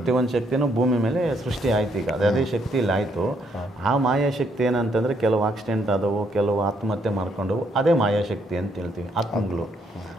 ಶಕ್ತಿನೂ ಭೂಮಿ ಮೇಲೆ ಸೃಷ್ಟಿ ಆಯ್ತು. ಈಗ ಅದೇ ಶಕ್ತಿ ಇಲ್ಲಿ ಆಯಿತು. ಆ ಮಾಯಾಶಕ್ತಿ ಏನಂತಂದರೆ ಕೆಲವು ಆಕ್ಸಿಡೆಂಟ್ ಆದವು, ಕೆಲವು ಆತ್ಮಹತ್ಯೆ ಮಾಡ್ಕೊಂಡವು, ಅದೇ ಮಾಯಾಶಕ್ತಿ ಅಂತ ಹೇಳ್ತೀವಿ, ಆತ್ಮಗಳು.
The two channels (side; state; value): both; normal; correlation 0.72